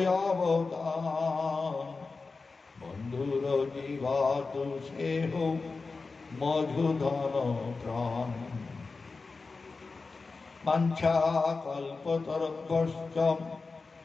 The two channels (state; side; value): quieter; right; 4.1 dB